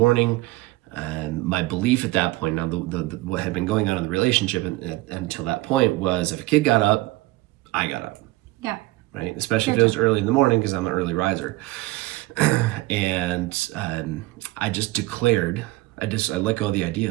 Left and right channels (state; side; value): quieter; left; 19.8 dB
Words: And my belief at that point, now what had been going on in the relationship until that point, was if a kid got up, I got up. Yeah. Right? Especially if it was early in the morning, because I'm an early riser. And I just declared, I let go of the